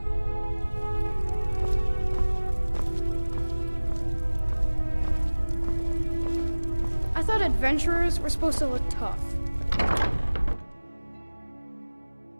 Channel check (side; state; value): both; inverted; correlation -1.00